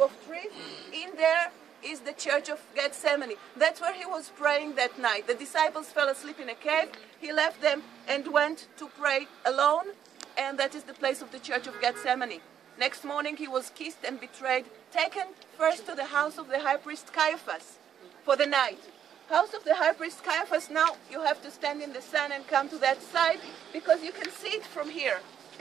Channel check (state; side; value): quieter; left; 9.1 dB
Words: trees. In there is the Church of Gethsemane. That's where he was praying that night. The disciples fell asleep in a cave. He left them and went to pray alone, and that is the place of the Church of Gethsemane. Next morning he was kissed and betrayed, taken first to the house of the high priest Caiaphas for the night. House of the high priest Caiaphas, now you have to stand in the sun and come to that side because you can see it from here.